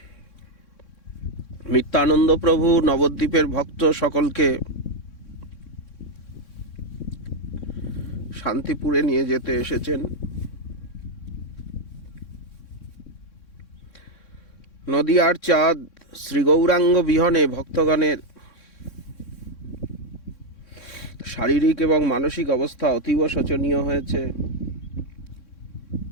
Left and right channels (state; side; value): late; right; 3.6 ms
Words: নিত্যানন্দ প্রভু নবদ্বীপের ভক্ত সকলকে শান্তিপুরে নিয়ে যেতে এসেছেন। নদিয়ার চাঁদ শ্রী গৌরাঙ্গ বিহনে ভক্তগণের শারীরিক এবং মানসিক অবস্থা অতীব শোচনীয় হয়েছে।